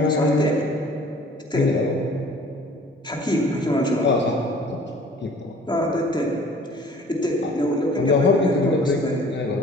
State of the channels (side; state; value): both; normal; correlation 0.50